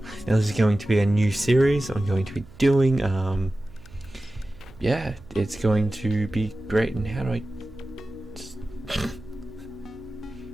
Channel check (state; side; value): noise; right; hum, 22 dB below the sound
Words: Now this is going to be a new series I'm going to be doing. Yeah, it's going to be great. And how do I just...